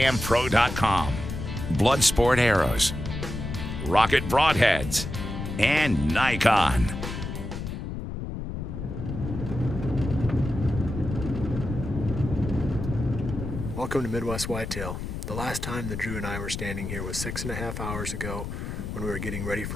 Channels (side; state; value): left; noise; rumble, 6 dB below the sound